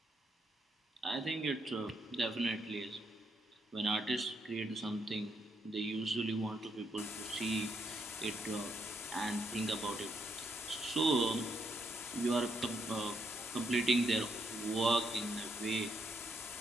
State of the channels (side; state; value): both; normal; correlation 0.77